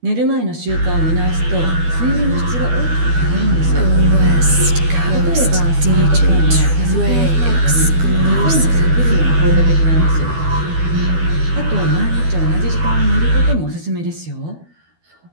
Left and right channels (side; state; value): left; late; 12 ms